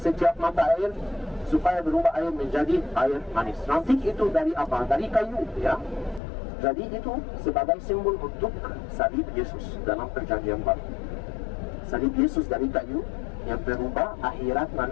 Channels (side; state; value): right; drops out; at 6.2 s